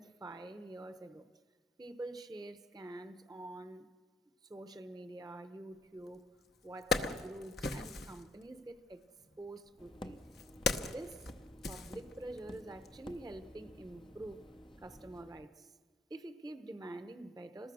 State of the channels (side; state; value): both; normal; correlation 0.66